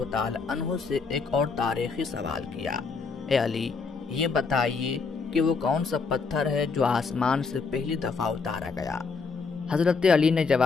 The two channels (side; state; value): right; quieter; 4.8 dB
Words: تعالی عنہ سے ایک اور تاریخی سوال کیا، اے علی، یہ بتائیے کہ وہ کون سا پتھر ہے جو آسمان سے پہلی دفعہ اتارا گیا؟ حضرت علی نے